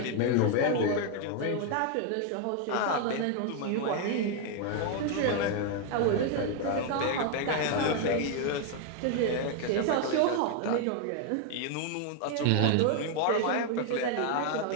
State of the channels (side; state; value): both; different; correlation 0.01